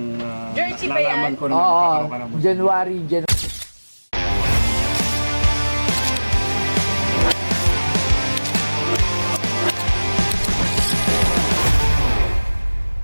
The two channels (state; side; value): inverted; both; correlation -1.00